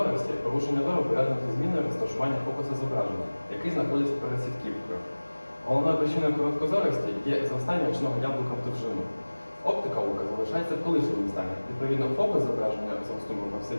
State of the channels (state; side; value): inverted; both; correlation -1.00